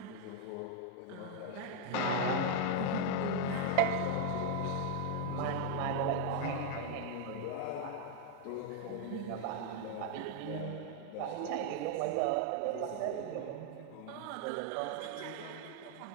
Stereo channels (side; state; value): both; different; correlation 0.00